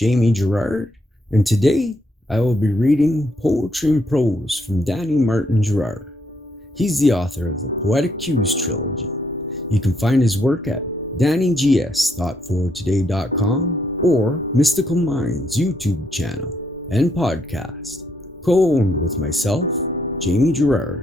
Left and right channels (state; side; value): normal; both; correlation 0.74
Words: Girard, and today I will be reading Poetry and Prose from Danny Martin Girard. He's the author of the Poetic Cues trilogy. You can find his work at DannyGS.fortoday.com or Mystical Minds YouTube channel and podcast, co-owned with myself, Jamie